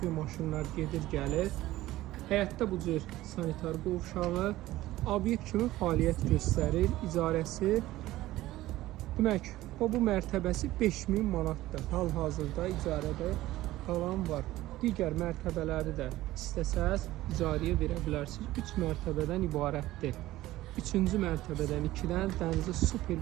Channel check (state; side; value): quieter; left; 16.3 dB